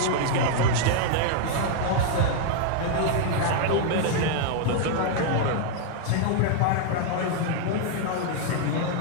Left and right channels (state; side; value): different; both; correlation 0.00